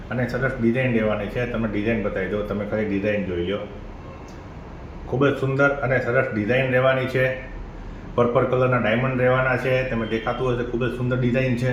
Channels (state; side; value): identical; both; correlation 1.00